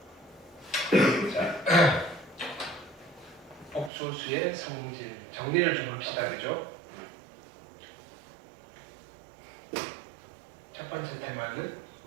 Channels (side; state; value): left; drops out; at 3.9 s